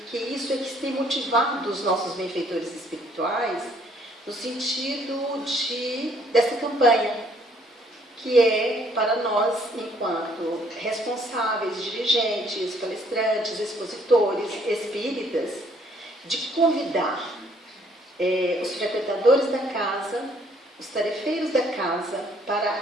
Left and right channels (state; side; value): normal; both; correlation 0.64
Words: isso é que tem motivado os nossos benfeitores espirituais no sentido dessa campanha, que é para nós, enquanto responsáveis, dirigentes, palestrantes, expositores, espíritas, de convidar os frequentadores da casa, os tarefeiros da casa, para